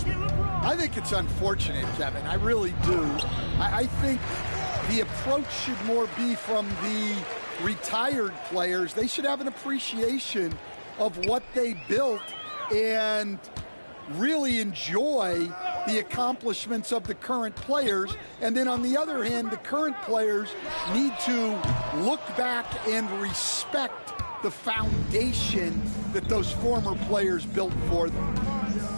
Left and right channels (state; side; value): inverted; both; correlation -1.00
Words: I think it's unfortunate, Kevin. I really do. I think the approach should more be from the retired players. They should have an appreciation of what they built and really enjoy the accomplishments of the current players. And then on the other hand, the current players need to look back and respect the foundation that those former players built for them.